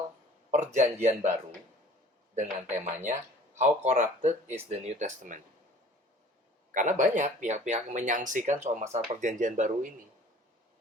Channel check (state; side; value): normal; both; correlation 0.49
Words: perjanjian baru dengan temanya How Corrupted is the New Testament. Karena banyak pihak-pihak menyangsikan soal masalah perjanjian baru ini.